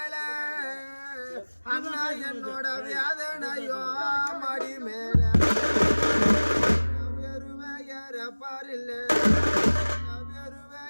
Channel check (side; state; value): both; inverted; correlation -1.00